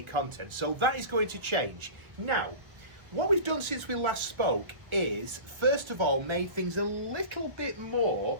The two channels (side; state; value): left; late; 1.1 ms